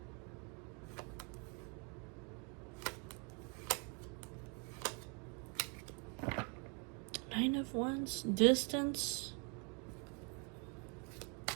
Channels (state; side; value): quieter; left; 36.6 dB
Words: Nine of Wands, distance.